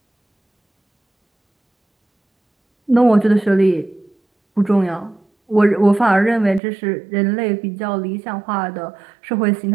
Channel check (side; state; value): left; drops out; at 6.6 s